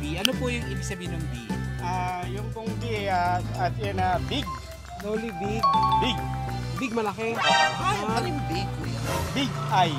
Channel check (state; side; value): identical; both; correlation 1.00